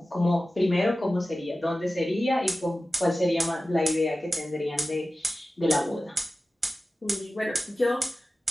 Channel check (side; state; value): both; normal; correlation 0.95